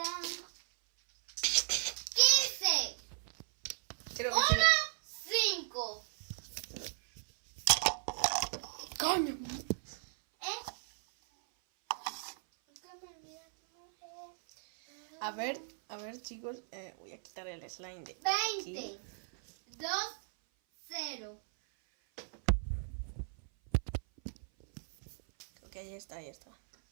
15. Creo que 1, 5. ¡Coño! ¿Eh? ¿Cómo olvidaste, mujer? A ver, chicos, voy a quitar el slime de 20. aquí. 2, 0. Un poquito más. Ok, ya está, ya está.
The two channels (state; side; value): silent; left; 54 dB below the other